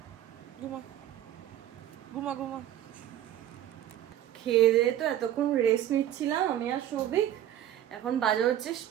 ঘুমা ঘুমা ঘুমা। খেয়ে দিয়ে তো এতক্ষণ রেস্ট নিচ্ছিলাম আমি আর সৌভিক। এখন বাজে হচ্ছে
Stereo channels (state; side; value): quieter; left; 11.7 dB